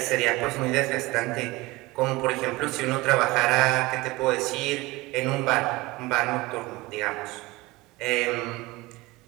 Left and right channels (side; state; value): left; quieter; 21.4 dB